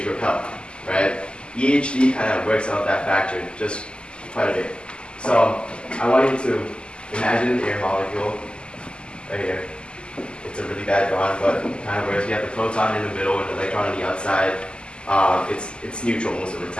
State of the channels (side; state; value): right; late; 0.050 ms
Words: repel, right? EHD kind of works out that factor just quite a bit. So I want you to imagine an air molecule right here. It's a really bad drawing, but kind of where you have the proton in the middle and the electron on the outside. It's neutral most of the